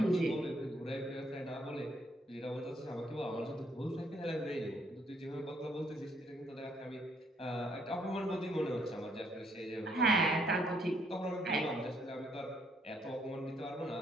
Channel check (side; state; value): both; normal; correlation 0.69